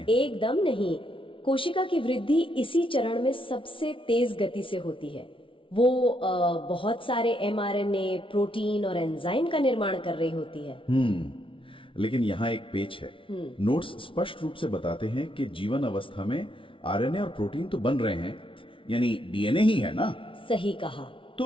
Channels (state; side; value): late; right; 0.25 ms